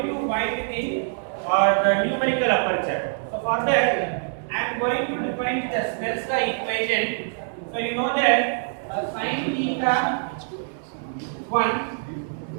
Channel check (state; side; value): silent; left; digital silence